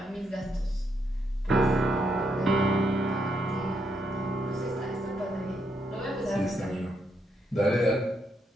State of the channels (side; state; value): both; normal; correlation 0.78